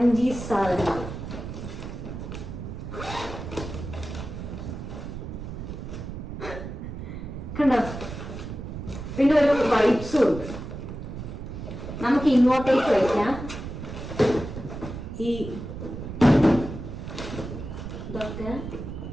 സാധനങ്ങൾ. കണ്ടോ? പിന്നെ ഒരു വൈപ്സും ഉണ്ട്. നമുക്ക് ഇങ്ങോട്ടേക്ക് വയ്ക്കാം. ഈ ഇതൊക്കെ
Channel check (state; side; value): noise; right; rumble, 8 dB below the sound